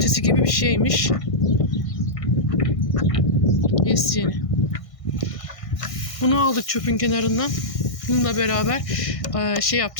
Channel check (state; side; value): late; right; 1.6 ms